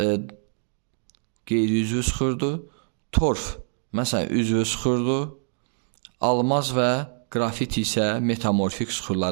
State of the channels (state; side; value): silent; left; 62 dB below the other